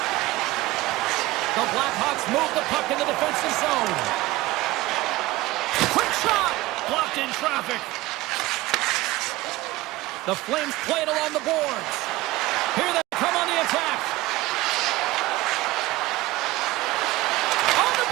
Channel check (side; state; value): left; quieter; 18.8 dB